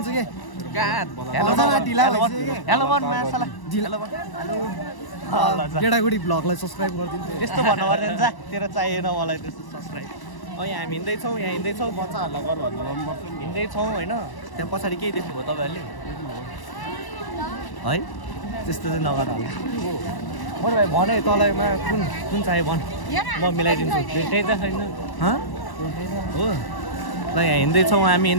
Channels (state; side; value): late; right; 1.1 ms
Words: के हेलो भन मासला गेडागुडी भ्लगलाई सब्सक्राइब गरिदिनु त्यस्तो भन्नु पर्दैन जा तेरो चाहिएन मलाई त्यस्तो सब्सक्राइब हामी हिँड्दैछौँ यहाँ हिँड्दैछौँ बच्चाहरूलाई गर भन्नु पर्छ हिँड्दैछौँ होइन त्यहाँ पछाडि केही देख्नुभयो तपाईँहरूले है त्यस्तो चाहिँ नगर होला मैले भाइ भने तँलाईमा कुन कुन चाहियो भन म मिलाइदिन्छु भेटै त छैन हो ल यहाँ हिँड्दैछौँ हामी